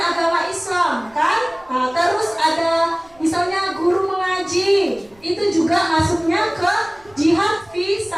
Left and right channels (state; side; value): noise; right; rumble, 29 dB below the sound